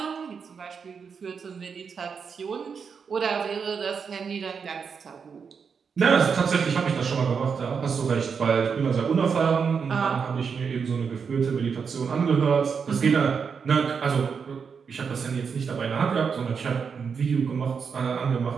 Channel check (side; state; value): left; quieter; 6.1 dB